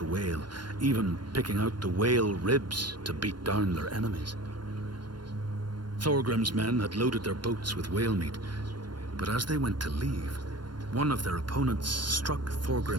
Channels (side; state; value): left; late; 0.71 ms